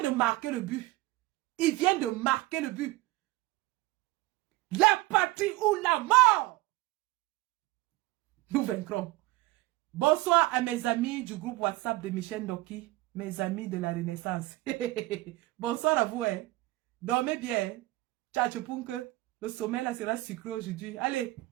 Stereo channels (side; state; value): left; quieter; 19.4 dB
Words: de marquer le but. Il vient de marquer le but. La patrie ou la mort. Nous vaincrons. Bonsoir à mes amis du groupe WhatsApp de Michel Ndoki, mes amis de la Renaissance. Bonsoir à vous. Dormez bien. Ciao, le sommeil là sera sucré aujourd'hui. Allez.